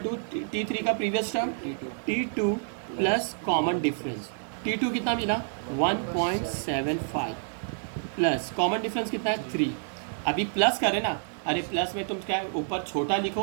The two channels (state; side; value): silent; left; digital silence